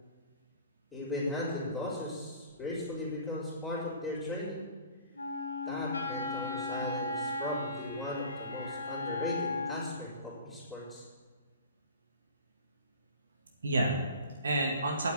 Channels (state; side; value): inverted; both; correlation -0.44